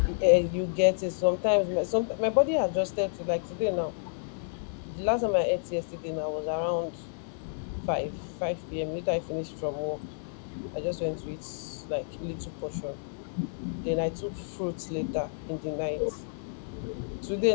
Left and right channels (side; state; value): right; silent; digital silence